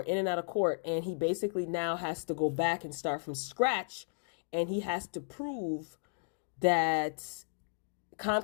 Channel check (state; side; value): silent; right; digital silence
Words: and he basically now has to go back and start from scratch, and he has to prove that